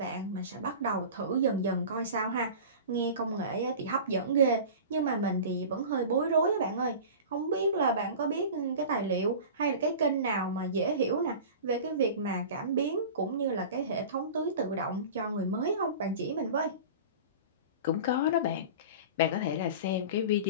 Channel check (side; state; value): both; inverted; correlation -0.35